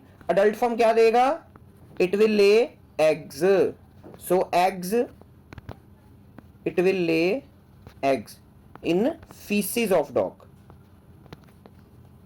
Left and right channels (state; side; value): identical; both; correlation 1.00